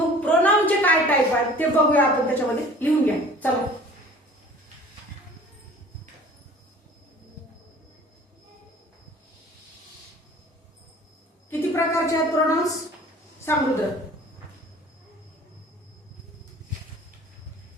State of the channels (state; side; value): normal; both; correlation 0.47